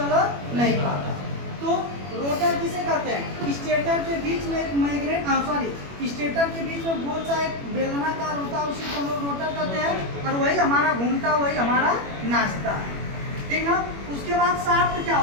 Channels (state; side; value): late; left; 21 ms